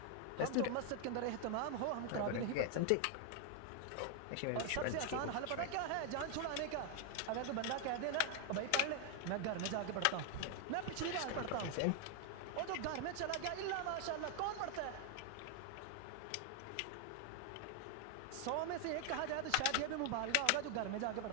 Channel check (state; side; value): different; both; correlation 0.00